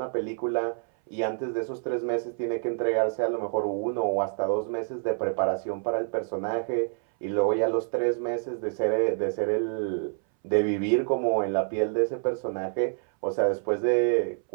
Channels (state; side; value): silent; left; 60 dB below the other